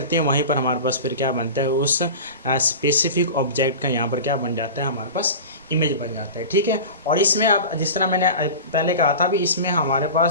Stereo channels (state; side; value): inverted; both; correlation -0.31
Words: हैं, वहीं पर हमारे पास फिर क्या बनता है, उस स्पेसिफिक ऑब्जेक्ट का यहाँ पर क्या बन जाता है, हमारे पास इमेज बन जाता है। ठीक है। और इसमें अब जिस तरह मैंने पहले कहा था भी, इसमें हमारे